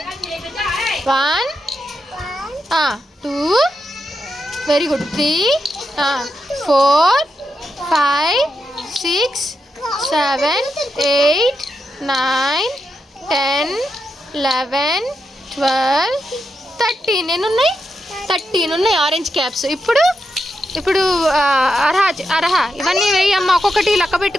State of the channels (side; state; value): both; normal; correlation 0.85